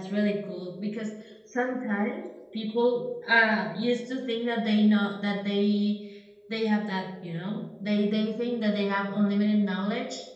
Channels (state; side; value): identical; both; correlation 1.00